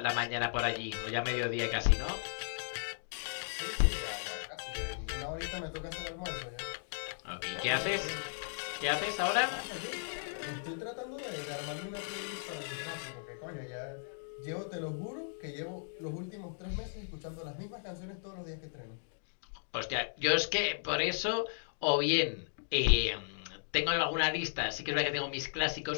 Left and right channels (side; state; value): right; silent; digital silence